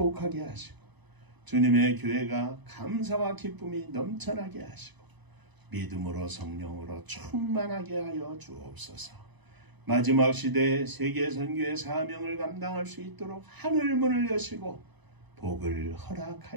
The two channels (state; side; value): late; left; 1.0 ms